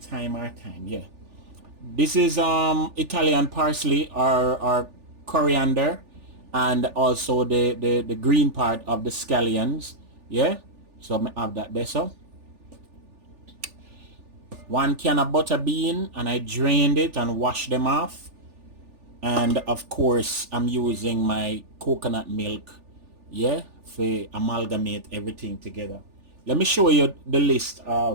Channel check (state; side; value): late; left; 3.4 ms